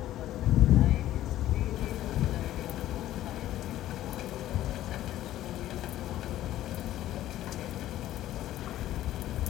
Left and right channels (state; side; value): quieter; right; 13.7 dB